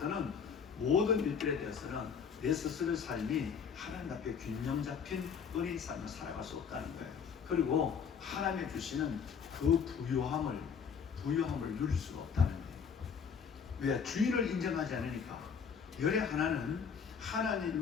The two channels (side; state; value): right; quieter; 6.6 dB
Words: 모든 일들에 대해서는 내 스스로의 삶이 하나님 앞에 균형 잡힌 은혜의 삶을 살아갈 수 없다는 거예요. 그리고 하나님이 주시는 그 부요함을 누릴 수가 없다는 거예요. 왜? 주인을 인정하지 않으니까. 열의 하나는